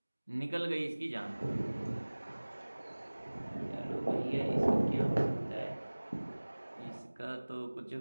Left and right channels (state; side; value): inverted; both; correlation -1.00